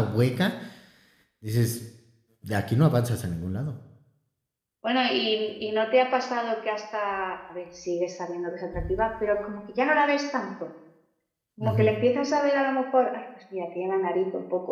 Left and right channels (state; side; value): identical; both; correlation 1.00